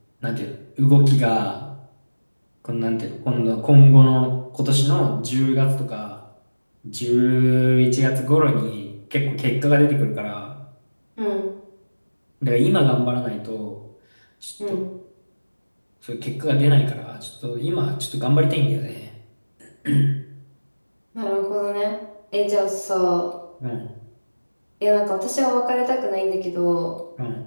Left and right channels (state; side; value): inverted; both; correlation -1.00